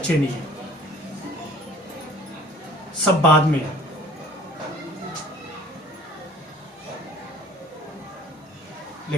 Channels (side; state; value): both; normal; correlation 0.51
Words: नहीं है, सब बाद में है।